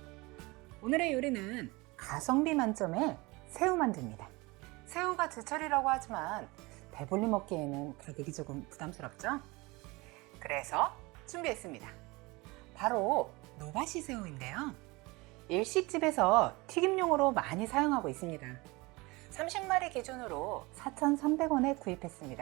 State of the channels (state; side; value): quieter; left; 23.9 dB